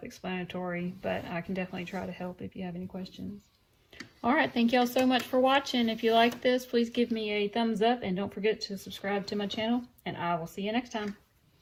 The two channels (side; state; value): both; identical; correlation 1.00